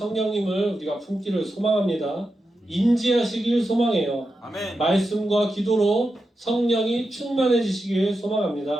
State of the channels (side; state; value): both; normal; correlation 0.89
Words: 우리가 품기를 소망합니다. 인지하시길 소망해요. 아멘. 말씀과 기도로 성령이 충만해지시길